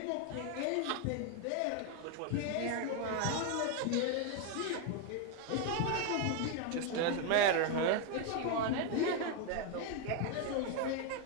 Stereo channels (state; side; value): different; both; correlation 0.01